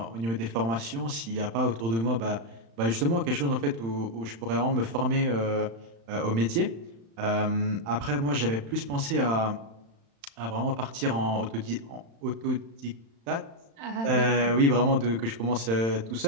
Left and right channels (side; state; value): left; late; 35 ms